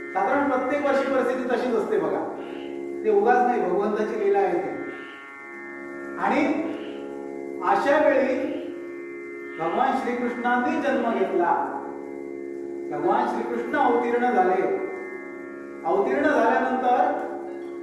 साधारण प्रत्येक वर्षी परिस्थिती तशीच असते बघा, ते उगाच नाही, भगवंताची लीला आहे ती। आणि अशा वेळी भगवान श्रीकृष्णांनी जन्म घेतला, भगवान श्रीकृष्ण अवतीर्ण झाले। अवतीर्ण झाल्यानंतर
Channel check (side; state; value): both; identical; correlation 1.00